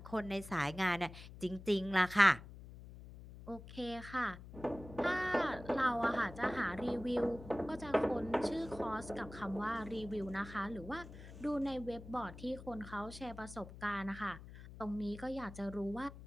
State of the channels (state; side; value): noise; left; hum, 15 dB below the sound